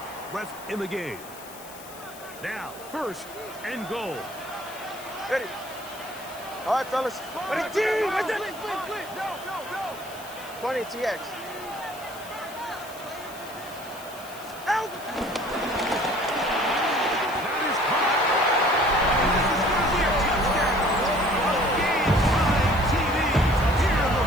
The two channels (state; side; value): noise; left; hiss, 18 dB below the sound